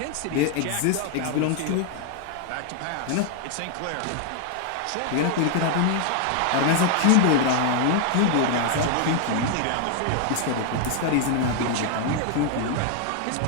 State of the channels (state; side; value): different; both; correlation 0.00